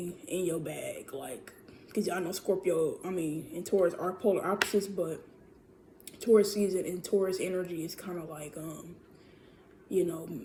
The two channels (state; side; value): identical; both; correlation 1.00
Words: in your bag, like, because I know Scorpio, I mean, and Taurus are polar opposites, but Taurus season and Taurus energy is kind of like you know,